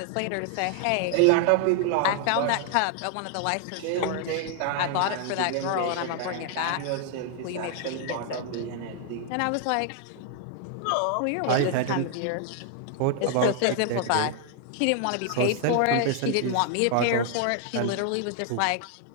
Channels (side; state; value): both; different; correlation 0.00